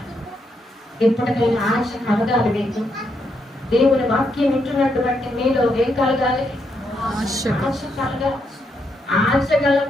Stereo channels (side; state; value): both; normal; correlation 0.79